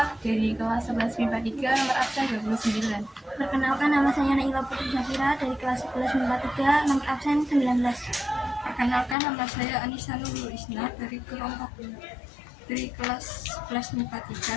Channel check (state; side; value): drops out; right; at 9.2 s